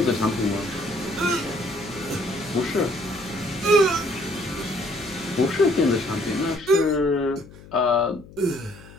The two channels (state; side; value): noise; left; hum, 20 dB below the sound